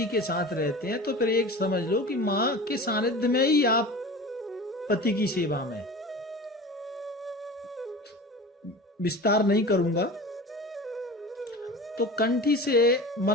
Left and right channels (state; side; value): normal; both; correlation 0.35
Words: के साथ रहते हैं, तो फिर एक समझ लो कि मां के सानिध्य में ही आप पति की सेवा में। विस्तार नहीं करूंगा। तो कंठी से